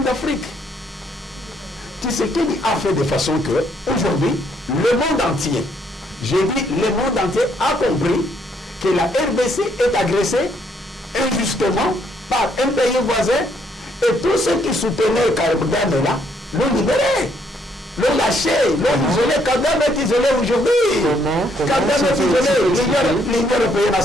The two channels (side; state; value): both; normal; correlation 0.70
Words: d'Afrique. Tu sais qu'il a fait de façon que, aujourd'hui, le monde entier, j'ai dit, le monde entier a compris que la RDC est agressée injustement par un pays voisin et tous ceux qui soutenaient Kabila là, l'ont libéré, l'ont lâché, l'ont isolé. Kagame est isolé aujourd'hui. Kagame est isolé. L'Union européenne a